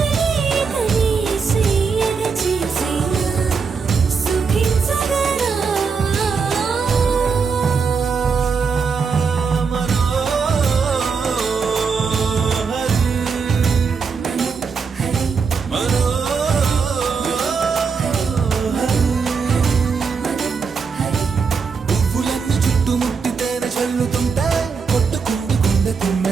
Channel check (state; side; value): quieter; left; 5.4 dB